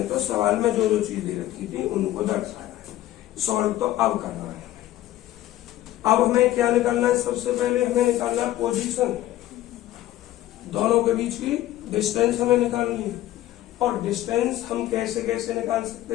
तो सवाल में जो जो चीज दे रखी थी उनको दर्शाया है, सॉल्व तो अब करना है। अब हमें क्या निकालना है, सबसे पहले हमें निकालना है पोजीशन, दोनों के बीच की डिस्टेंस हमें निकालनी है। और डिस्टेंस हम कैसे कैसे निकाल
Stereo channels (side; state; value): right; quieter; 14.3 dB